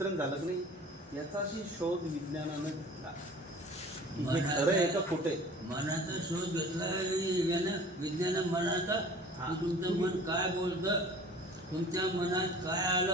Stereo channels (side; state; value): both; normal; correlation 0.45